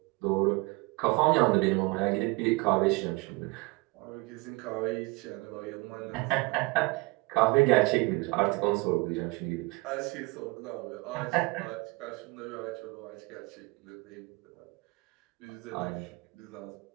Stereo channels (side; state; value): left; quieter; 25.7 dB